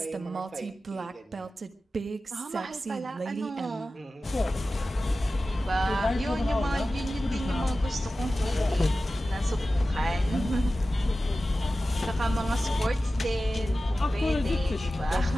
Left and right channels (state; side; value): normal; both; correlation 0.95